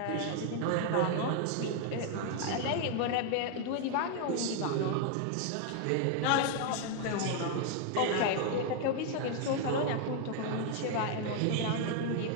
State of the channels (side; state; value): both; different; correlation 0.00